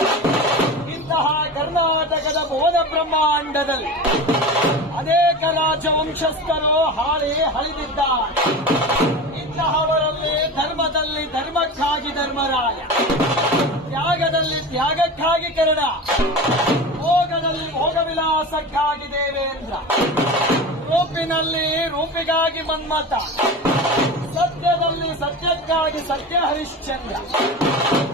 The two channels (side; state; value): both; normal; correlation 0.29